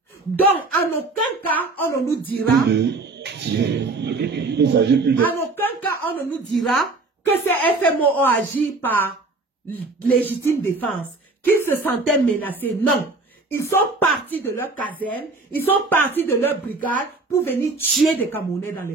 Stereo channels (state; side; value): quieter; left; 3.4 dB